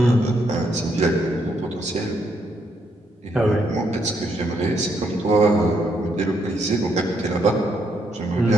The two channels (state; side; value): normal; both; correlation 0.75